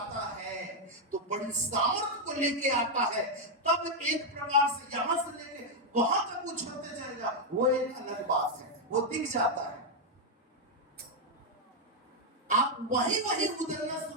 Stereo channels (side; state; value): both; normal; correlation 0.00